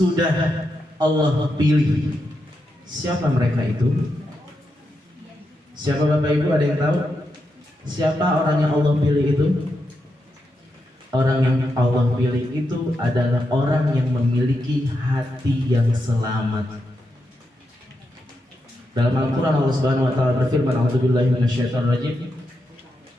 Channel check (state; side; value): normal; both; correlation 0.85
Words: Allah pilih. Siapa mereka itu? Siapa Bapak Ibu, ada yang tahu? Siapa orang yang Allah pilih itu? Orang yang Allah pilih itu adalah orang yang memiliki hati yang selamat. Dalam Al-Quran Allah Subhanahu wa taala berfirman, "A'udzubillahi minasyaitonir rajim.